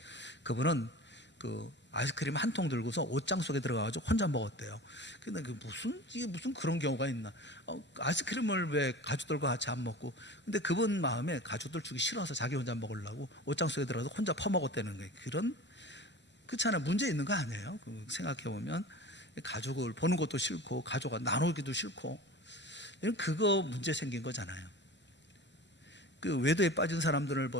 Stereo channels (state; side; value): normal; both; correlation 0.36